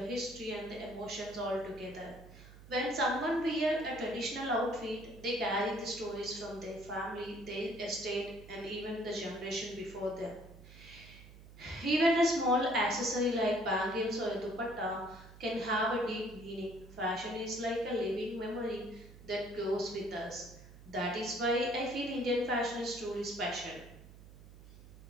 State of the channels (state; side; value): noise; right; hum, 18 dB below the sound